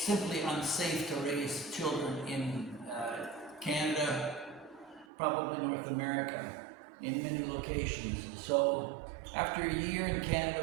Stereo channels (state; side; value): drops out; left; at 5.1 s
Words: unsafe to raise children in Canada, probably North America, in many locations. So after a year in